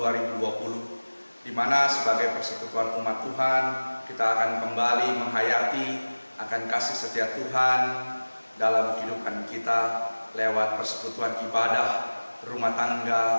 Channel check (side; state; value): both; inverted; correlation -1.00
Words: di mana sebagai persekutuan umat Tuhan, kita akan kembali menghayati akan kasih setia Tuhan dalam kehidupan kita lewat persekutuan ibadah rumah tangga